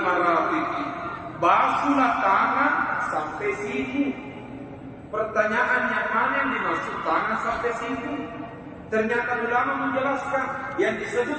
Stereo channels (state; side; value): identical; both; correlation 1.00